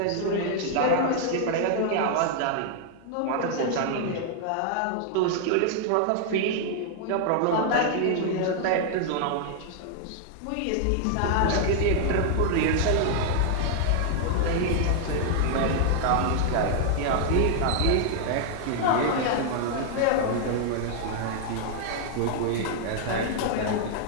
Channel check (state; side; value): different; both; correlation 0.00